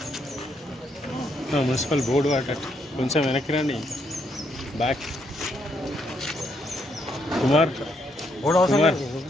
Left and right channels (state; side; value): normal; both; correlation 0.75